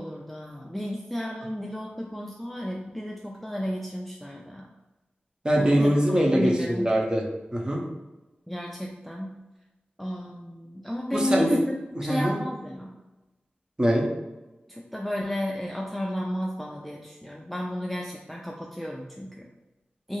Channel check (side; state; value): both; normal; correlation 0.95